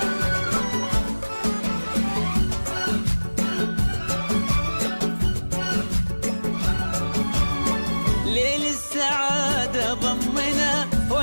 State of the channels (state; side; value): inverted; both; correlation -1.00